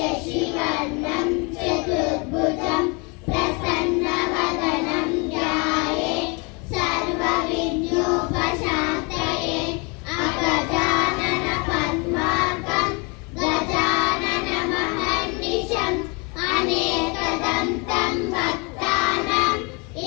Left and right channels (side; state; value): right; quieter; 31.0 dB